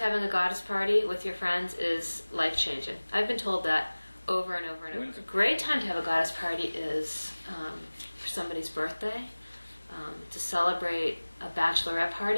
a goddess party with your friends is life-changing. I've been told that over and over and over. A great time to have a goddess party is for somebody's birthday, to celebrate a bachelorette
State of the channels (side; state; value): both; inverted; correlation -1.00